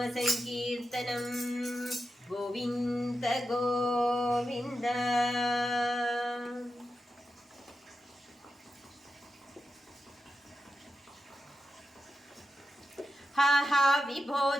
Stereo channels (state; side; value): normal; both; correlation 0.90